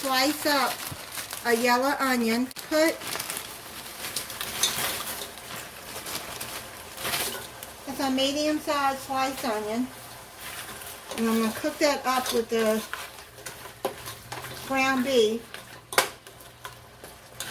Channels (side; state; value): both; identical; correlation 1.00